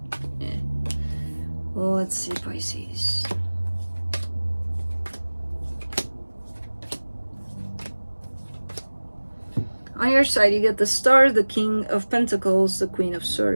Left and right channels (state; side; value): inverted; both; correlation -1.00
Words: Yeah. Well, let's see, Pisces. On your side, you get the Star, the King of Pentacles, the Queen of